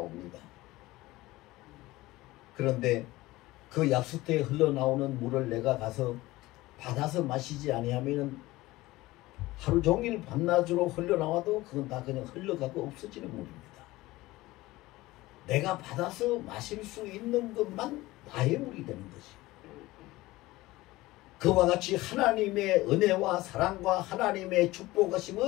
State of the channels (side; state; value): right; quieter; 18.8 dB